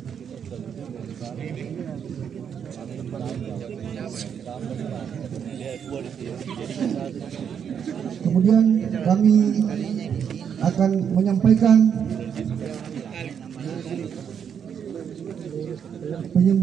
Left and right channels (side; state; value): left; quieter; 7.8 dB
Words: Kemudian kami akan menyampaikan